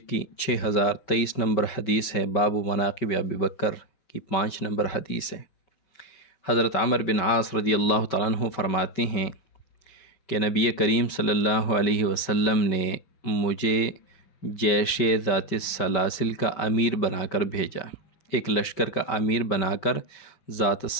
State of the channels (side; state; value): right; late; 5.2 ms